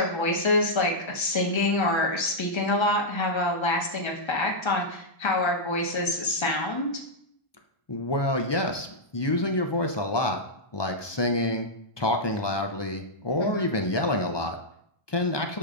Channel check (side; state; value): right; late; 1.2 ms